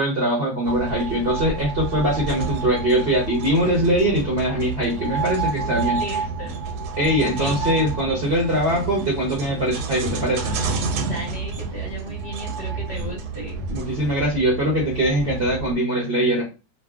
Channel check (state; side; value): normal; both; correlation 0.05